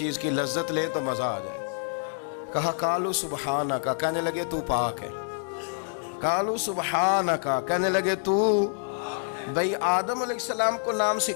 کی لذت لیں تو مزہ آ جائے۔ کہا قالوا سبحانک، کہنے لگے تو پاک ہے، قالوا سبحانک، کہنے لگے تو، بھئی آدم علیہ السلام کو نام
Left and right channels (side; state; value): right; silent; digital silence